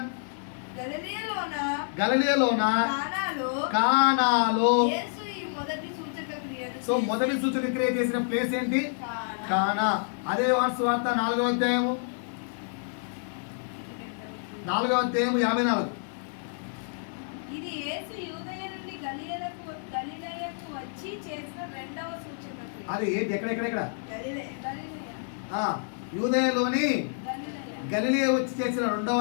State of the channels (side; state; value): right; silent; 59 dB below the other